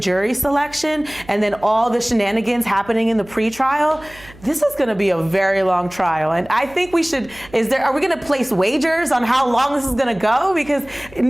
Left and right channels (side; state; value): right; noise; hum, 23 dB below the sound